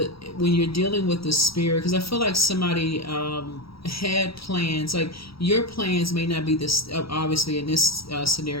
spirit, because I feel like somebody had plans. Like your plans may not be this. Obviously, in this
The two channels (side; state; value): right; late; 0.75 ms